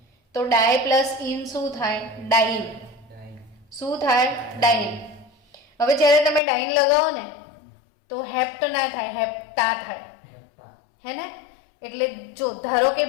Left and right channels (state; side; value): drops out; right; at 6.4 s